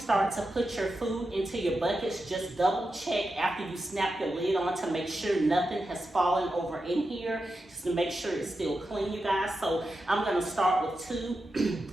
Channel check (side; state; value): both; normal; correlation 0.89